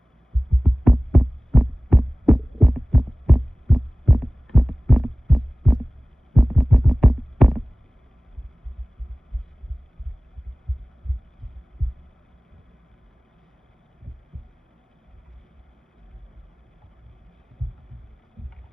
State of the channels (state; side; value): normal; both; correlation 0.98